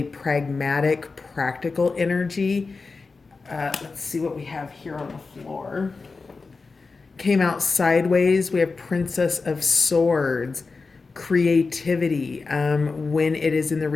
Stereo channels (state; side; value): quieter; right; 4.2 dB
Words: pragmatic, practical energy. Let's see what we have here on the floor. Came out sideways. We have Princess of Swords, creativity. When it is in the